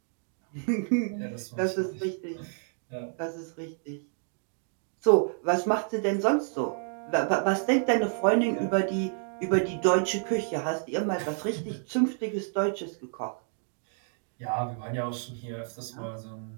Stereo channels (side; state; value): left; silent; 58 dB below the other